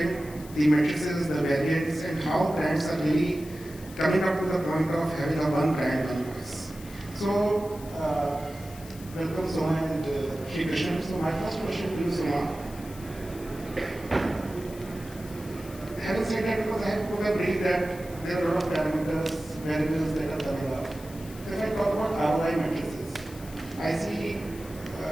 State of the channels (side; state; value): left; noise; hiss, 19 dB below the sound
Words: the matrices, the variants, and how brands are really coming up to the point of having a one brand, one voice. So, welcome Soma and Srikrishna. So my first question to you, Soma. Having said that, because I have put a brief that there are a lot of parameters, variables that are coming up. So if I talk about ROI matrices, I see